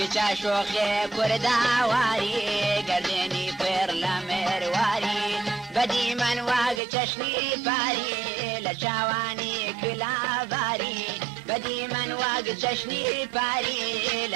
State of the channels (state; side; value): drops out; left; at 6.8 s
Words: شوخي كردا واري قرديني فر لامير واري بدي من واق چشني فاري لشاواني كلا باري بدي من واق چشني فاري